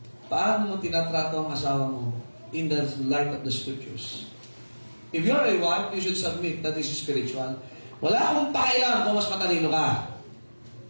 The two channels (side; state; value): both; inverted; correlation -1.00